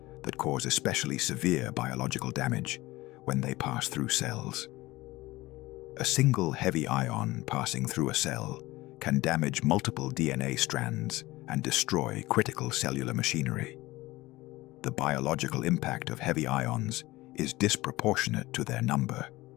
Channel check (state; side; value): quieter; right; 19.2 dB